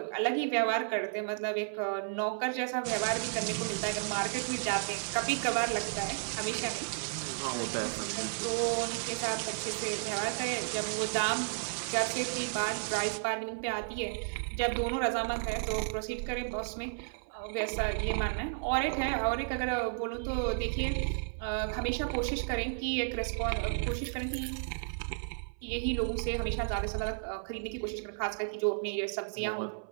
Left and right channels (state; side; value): silent; left; 56 dB below the other